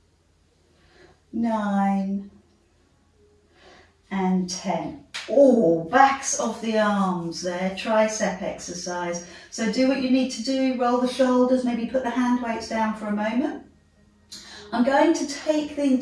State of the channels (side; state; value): both; identical; correlation 1.00